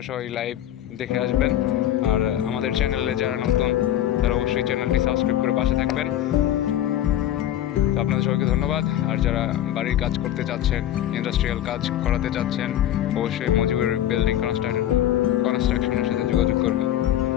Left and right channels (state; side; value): quieter; right; 11.9 dB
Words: সবাই লাইভ দেখে আসবেন। আর আমাদের চ্যানেলে যারা নতুন তারা অবশ্যই চ্যানেলটি সাবস্ক্রাইব করে পাশে থাকবেন। তো আপনাদের সবাইকে ধন্যবাদ। আর যারা বাড়ির কাজ করতে চাচ্ছেন, ইন্ডাস্ট্রিয়াল কাজ করাতে চাচ্ছেন, অবশ্যই মজিবুর বিল্ডিং কনস্ট্রাকশনের সাথে যোগাযোগ করবেন।